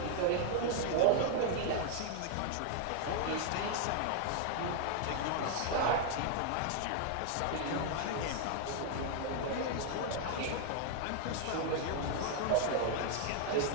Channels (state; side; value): different; both; correlation 0.00